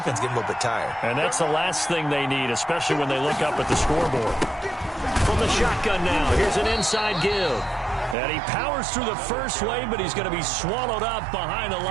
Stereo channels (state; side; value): drops out; left; at 8.2 s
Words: getting a little bit tired. And that's the last thing they need, especially when they look up at the scoreboard. From the shotgun now, here's an inside give. And he powers through the first wave, but he's going to be swallowed up behind the